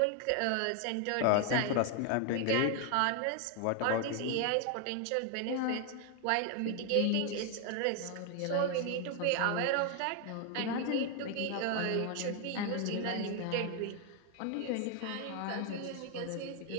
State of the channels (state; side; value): different; both; correlation 0.01